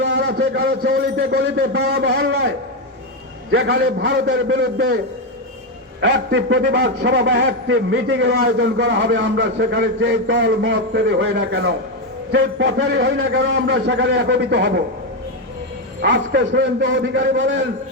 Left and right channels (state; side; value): normal; both; correlation 0.07